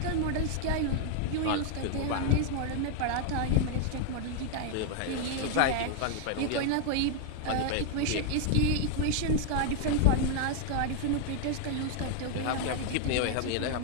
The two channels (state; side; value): different; both; correlation 0.00